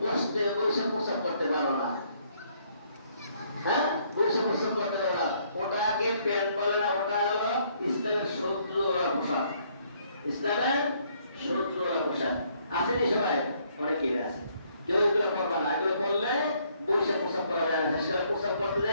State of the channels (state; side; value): inverted; both; correlation -0.67